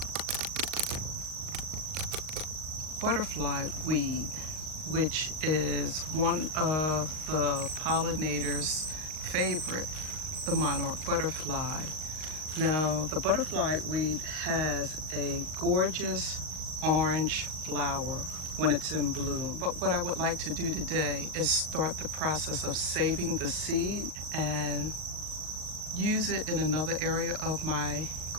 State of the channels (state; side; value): late; left; 39 ms